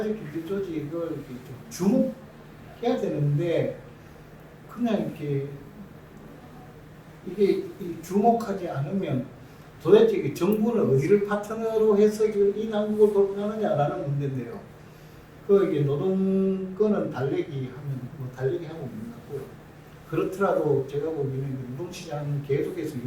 경제 조직을 이렇게 좀 주목해야 되는데 그냥 이렇게 이게 주목하지 않으면 도대체 그 정부는 어디를 파트너로 해서 이 난국을 돌파하느냐라는 문제인데요. 그 이게 노동권은 달래기 하면 뭐 달래기 하고 있는 거고, 그렇더라도 제가 보기에는 노동시장은 계속해서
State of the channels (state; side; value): identical; both; correlation 1.00